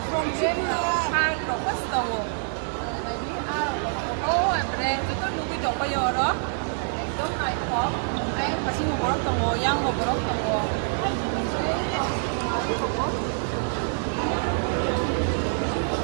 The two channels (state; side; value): silent; left; 61 dB below the other